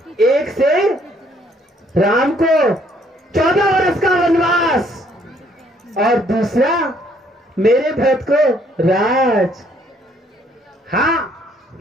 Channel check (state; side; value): normal; both; correlation 0.65